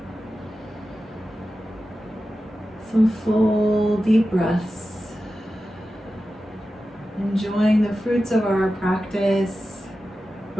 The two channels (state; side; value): normal; both; correlation 0.93